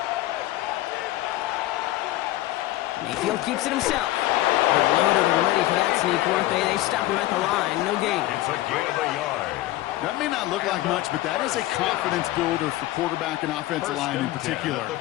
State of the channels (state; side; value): quieter; right; 16.3 dB